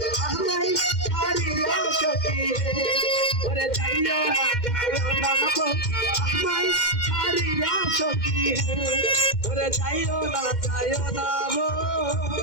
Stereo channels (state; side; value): late; right; 2.1 ms